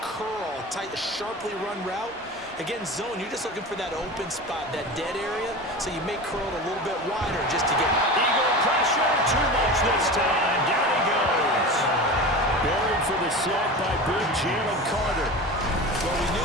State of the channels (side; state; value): both; normal; correlation 0.30